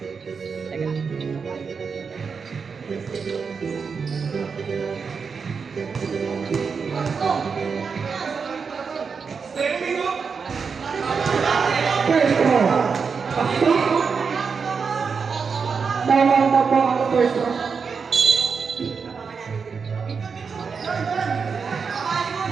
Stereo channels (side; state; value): left; quieter; 5.6 dB